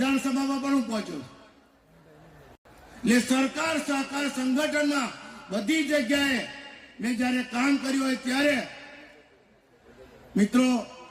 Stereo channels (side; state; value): both; identical; correlation 1.00